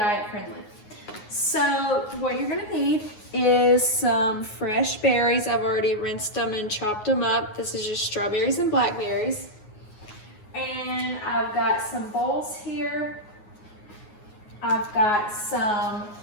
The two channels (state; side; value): late; right; 9.5 ms